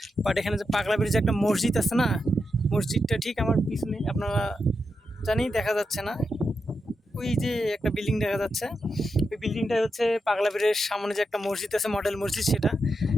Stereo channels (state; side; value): normal; both; correlation 0.86